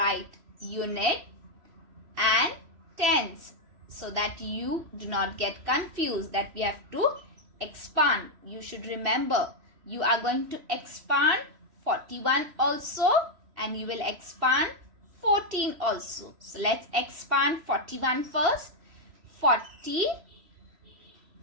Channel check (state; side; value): late; left; 3.0 ms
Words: unit and tens so that you do not get confused that we have to expand. You should remember you are going to expand 41 also and you will expand 14 also. So let's expand 41 first. 40